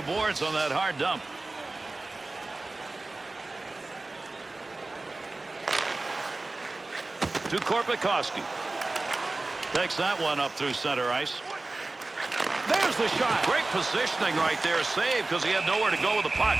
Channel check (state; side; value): quieter; left; 3.1 dB